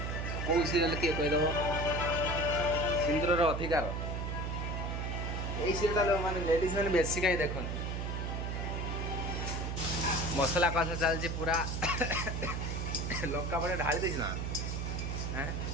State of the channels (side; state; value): right; noise; hum, 2 dB below the sound